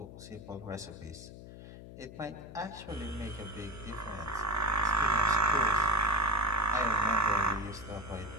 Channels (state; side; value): noise; left; hum, 14 dB below the sound